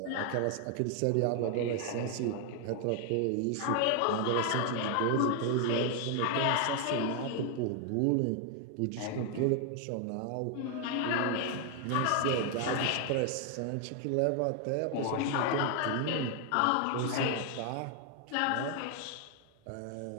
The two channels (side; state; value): both; different; correlation 0.00